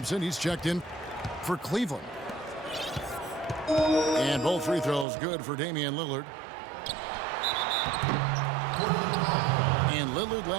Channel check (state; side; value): drops out; left; at 5.1 s